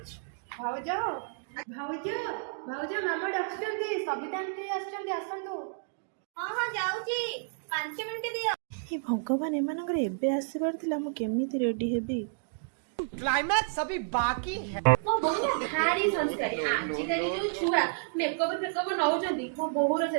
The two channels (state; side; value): silent; left; digital silence